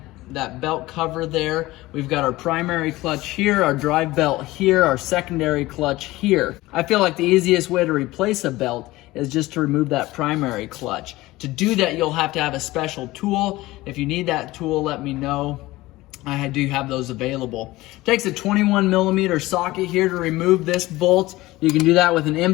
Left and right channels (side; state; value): right; quieter; 18.7 dB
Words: belt cover there. We've got our primary clutch here, our drive belt here, our secondary clutch here. I feel like the easiest way to replace a belt is just to remove that primary clutch. To do that, you'll have to have a special tool. If you need that tool, let me know. I do have those available. It takes a 21mm socket here to remove this bolt. You can do that with an